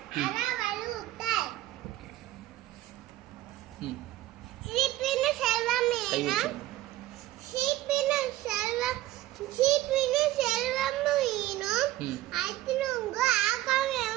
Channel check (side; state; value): left; quieter; 15.6 dB